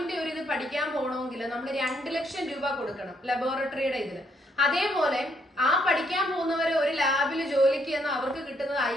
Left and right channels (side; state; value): both; normal; correlation 0.72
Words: ഒരു ഇത് പഠിക്കാൻ പോകണമെങ്കിൽ നമ്മൾ 2 ലക്ഷം രൂപ കൊടുക്കണം ലബോറട്ടറിയുടെ ഇതിന്. അതേപോലെ ആ പഠിക്കാൻ പോകുന്നവരെ ഒരു ലാബിൽ ജോലിക്ക് ചെന്ന് അവർക്ക് കിട്ടുന്നത്